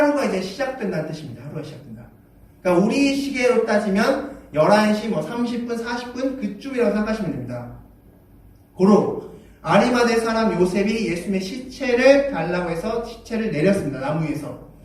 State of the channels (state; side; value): identical; both; correlation 1.00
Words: 이제 시작된다는 뜻입니다. 하루가 시작된다. 그러니까 우리 시계로 따지면 11시 30분, 40분 그쯤이라고 생각하시면 됩니다. 고로 아리마대 사람 요셉이 예수님의 시체를 달라고 해서 시체를 내렸습니다. 나무 위에서.